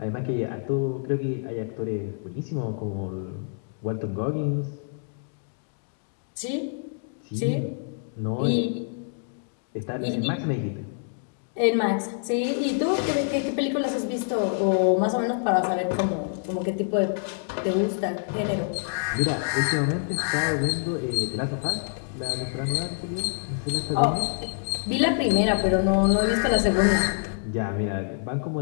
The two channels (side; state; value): right; silent; digital silence